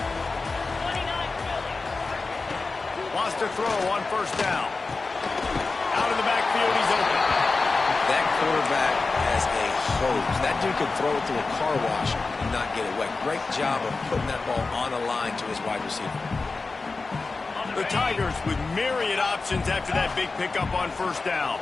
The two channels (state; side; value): quieter; right; 3.9 dB